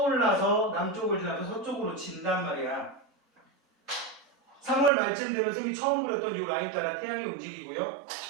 남쪽을 지나서 서쪽으로 진단 말이야. 3월 말쯤 되면 쌤이 처음 그렸던 이 라인 따라 태양이 움직이고요.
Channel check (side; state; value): left; drops out; at 4.9 s